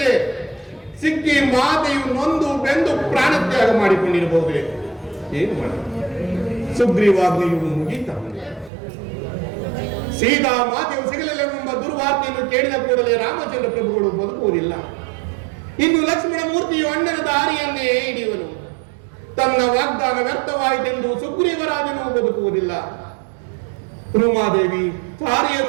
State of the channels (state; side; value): drops out; left; at 8.7 s